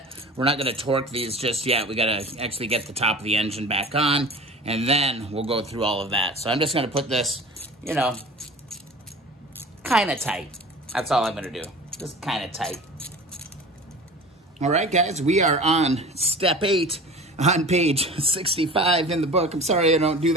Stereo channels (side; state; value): both; normal; correlation 0.38